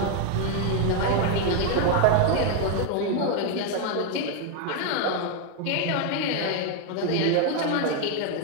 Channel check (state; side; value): different; both; correlation 0.01